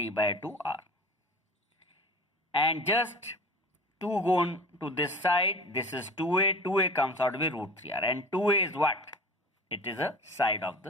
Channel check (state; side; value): normal; both; correlation 0.38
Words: by 2 R. And just 2 go on to this side. This is 2A. 2A comes out to be root 3R. And 2A is what? It is a side of